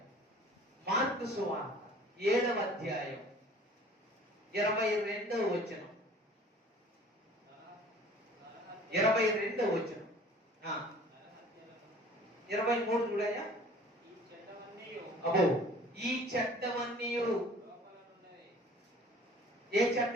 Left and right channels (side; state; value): both; normal; correlation 0.49